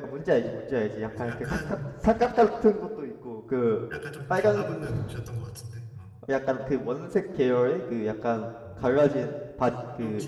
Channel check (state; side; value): identical; both; correlation 1.00